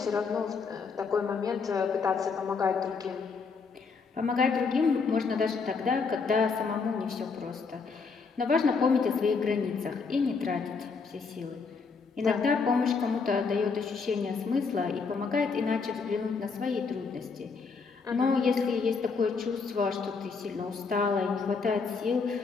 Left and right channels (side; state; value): right; quieter; 4.9 dB